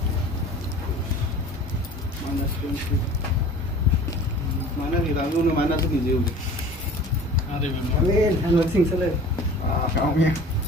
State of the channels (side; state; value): both; normal; correlation 0.43